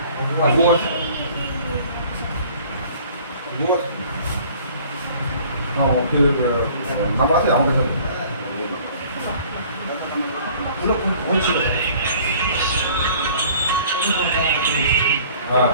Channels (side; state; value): both; inverted; correlation -0.52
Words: আছে, নাম্বার আছে আমার কাছে। হ্যাঁ